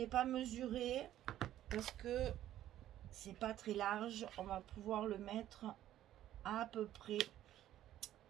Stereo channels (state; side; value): quieter; left; 12.6 dB